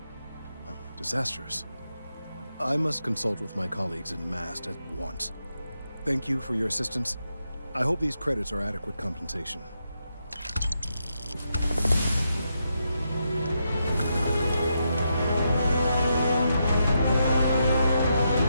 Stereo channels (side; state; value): both; inverted; correlation -0.83